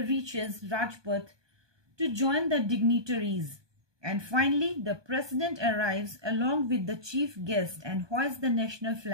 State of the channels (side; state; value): left; late; 1.2 ms